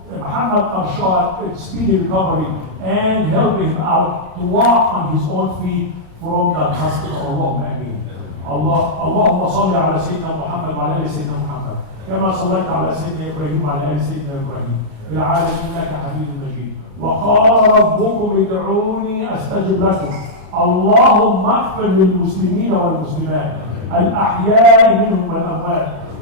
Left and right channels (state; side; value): late; left; 33 ms